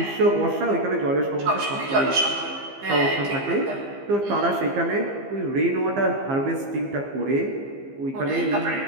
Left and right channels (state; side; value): late; left; 15 ms